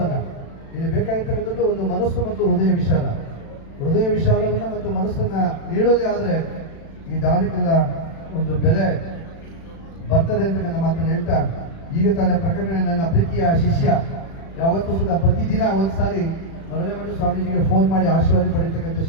ಇಲ್ಲಿ ಬೇಕಾಗಿರ್ತಕ್ಕಂಥದ್ದು ಒಂದು ಮನಸ್ಸು ಮತ್ತು ಹೃದಯ ವಿಶಾಲವನ್ನ ಮತ್ತು ಮನಸ್ಸನ್ನ ನೀಡೋದೇ ಆದ್ರೆ ಈ ದಾನಕ್ಕೆಲ್ಲ ಒಂದು ಬೆಲೆ ಬರ್ತದೆ ಅಂತಕ್ಕಂಥ ಮಾತನ್ನು ಹೇಳ್ತಾ, ಈಗ ತಾನೇ ಪ್ರಕಟಣೆ ನನ್ನ ಪ್ರೀತಿಯ ಶಿಷ್ಯ ಯಾವತ್ತೂ ಸುಧಾ ಪ್ರತಿದಿನ ಒಂದ್ಸಾರಿ ಮರಳಮಠ ಸ್ವಾಮೀಜಿಗೆ ಫೋನ್ ಮಾಡಿ ಆಶೀರ್ವಾದ ಪಡೆಯತಕ್ಕಂಥ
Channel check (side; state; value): right; late; 36 ms